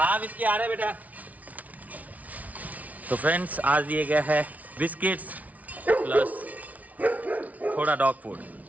बिस्किट आ रहे बेटा। तो फ्रेंड्स आज दिए गया है बिस्किट्स प्लस थोड़ा डॉग फूड।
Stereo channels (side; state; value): left; late; 0.071 ms